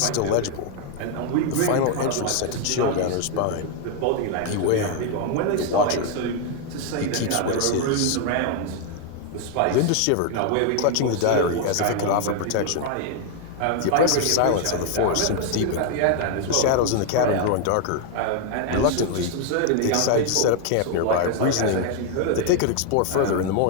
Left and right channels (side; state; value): both; different; correlation 0.00